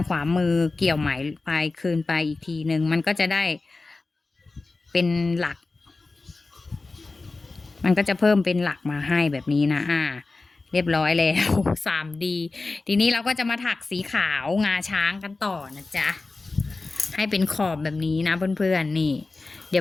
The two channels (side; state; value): right; quieter; 3.6 dB